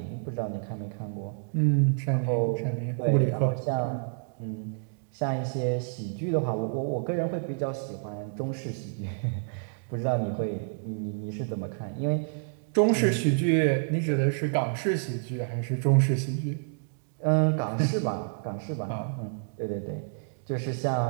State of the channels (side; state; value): left; silent; digital silence